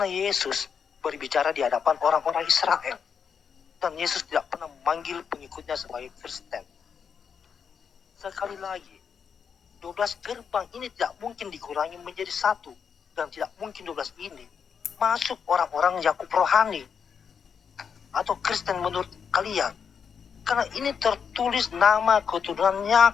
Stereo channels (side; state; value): right; quieter; 6.8 dB